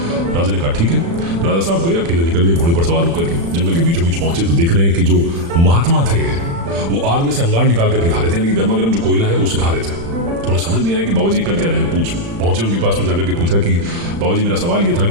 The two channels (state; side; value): late; left; 35 ms